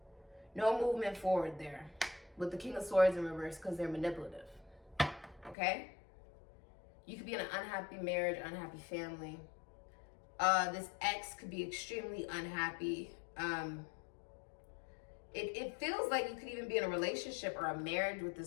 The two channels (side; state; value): right; drops out; at 5.6 s